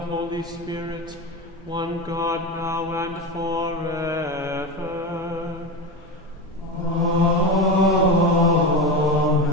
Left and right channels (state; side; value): normal; both; correlation 0.21